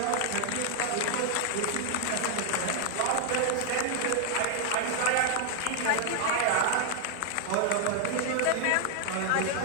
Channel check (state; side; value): different; both; correlation 0.00